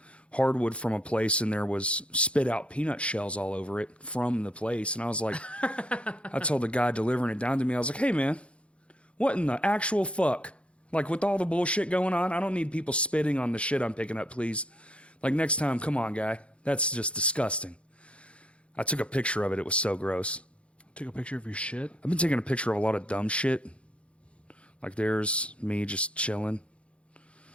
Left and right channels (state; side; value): late; right; 0.060 ms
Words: hardwood from a place, and there was spit out peanut shells all over it from the place. And I was like, I told the guy delivering it down to me, I was like, hey man, what in the actual fuck? Like with all the bullshit going on, I don't need people spitting on the shit I'm picking up, please. Like next time, come on, guy. That's just disgusting. I took a picture of it. It was so gross. Took a picture of your shit. I've been taking a picture of a lot of dumb shit. Like there's me just chilling.